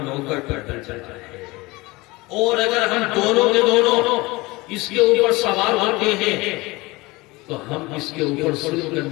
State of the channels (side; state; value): right; quieter; 22.4 dB